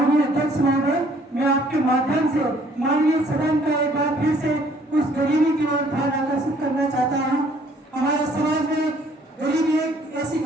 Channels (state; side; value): normal; both; correlation 0.61